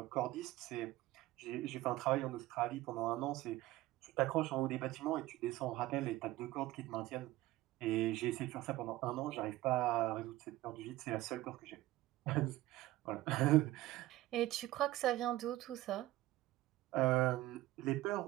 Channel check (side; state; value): left; quieter; 16.8 dB